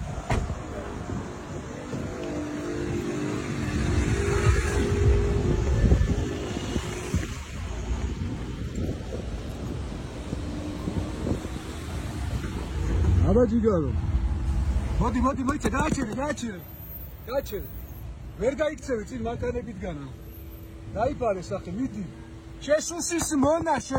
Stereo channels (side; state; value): both; identical; correlation 1.00